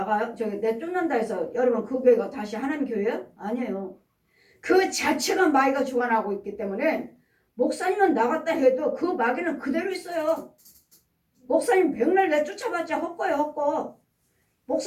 내쫓는다 해서 여러분 그 교회가 다시 하나님 교회야? 아니에요. 그 자체가 마귀가 주관하고 있기 때문에 목사님은 나갔다 해도 그 마귀는 그대로 있어요. 목사님 백날 내쫓아봤자 헛거예요, 헛거.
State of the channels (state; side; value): identical; both; correlation 1.00